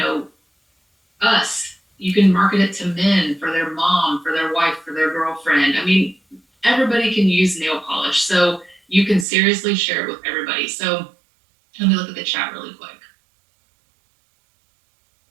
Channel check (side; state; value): left; drops out; at 9.2 s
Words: us. You can market it to men, for their mom, for their wife, for their girlfriend. I mean, everybody can use nail polish. So you can seriously share it with everybody. So let me look at the chat really quick.